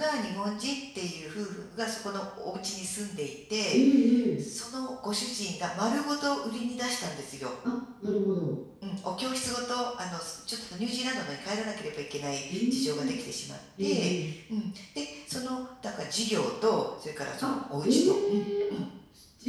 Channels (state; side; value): identical; both; correlation 1.00